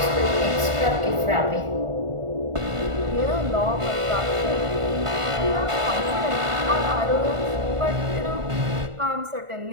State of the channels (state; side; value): late; left; 1.4 ms